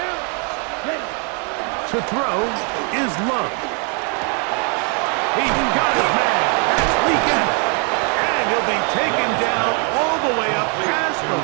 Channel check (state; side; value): quieter; left; 37.4 dB